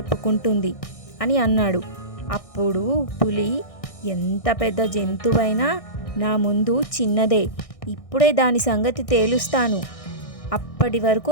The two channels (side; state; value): right; late; 1.6 ms